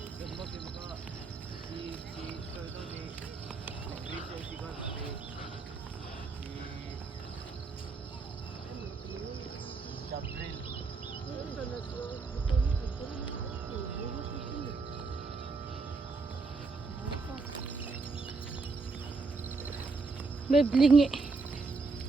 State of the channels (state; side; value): quieter; left; 4.1 dB